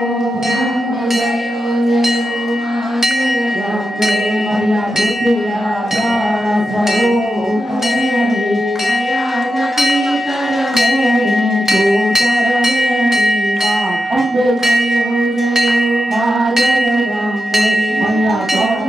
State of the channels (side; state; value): both; normal; correlation 0.89